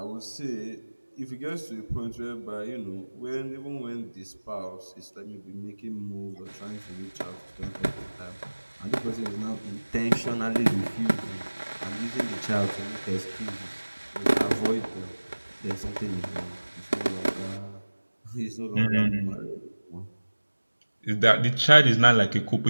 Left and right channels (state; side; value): inverted; both; correlation -1.00